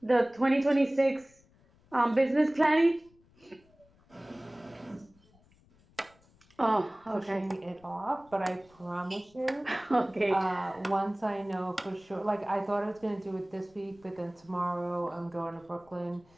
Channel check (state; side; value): noise; left; rumble, 30 dB below the sound